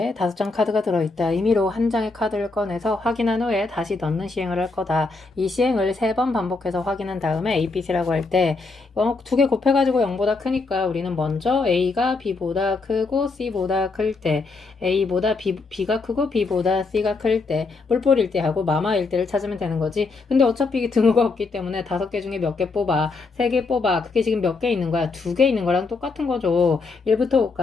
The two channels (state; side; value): quieter; right; 3.9 dB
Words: 5장 카드가 들어있다. 임의로 한 장의 카드를 꺼내서 확인한 후에 다시 넣는 시행을 할 거다. 이 시행을 3번 반복해서 확인한 다음에 A, B, C라고 할 때 2개 곱해가지고 0보다 크니까 우리는 먼저 A가 B보다 크고 C보다 클 때, A보다 B가 크고 B보다 C가 클 때, 뿔뿔일 때 하고 마마일 때를 찾으면 되는 거지. 근데 어차피 등호가 없기 때문에 5개 중에 몇 개 뽑아, 3개 뽑아. 그게 지금 몇 개 있는 거야? 2개 있는 거랑 똑같은 거죠. 1부터